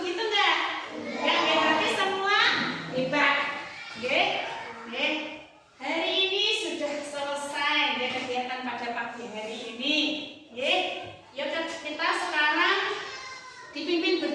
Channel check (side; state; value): both; identical; correlation 1.00